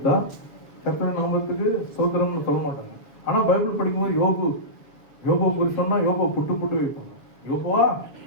கர்த்தர் நாமத்துக்கு சோதரம்னு சொல்ல மாட்டாங்க. ஆனா பைபிள் படிக்கும்போது யோபு குறித்து சொன்னா யோபு புட்டு புட்டு வைப்பாங்க. யோபுவா,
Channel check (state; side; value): late; right; 7.1 ms